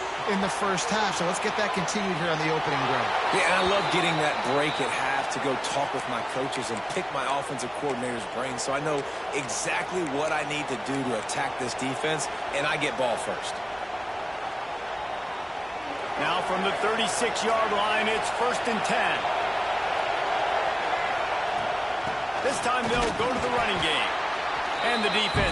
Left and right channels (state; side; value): identical; both; correlation 1.00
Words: in the first half, so let's get that continued here on the opening drive. Yeah, and I love getting that break at half to go talk with my coaches and pick my offensive coordinator's brain so I know exactly what I need to do to attack this defense, and I get ball first. Now from the 36-yard line, it's 1st and 10. This time they'll go to the running game. And the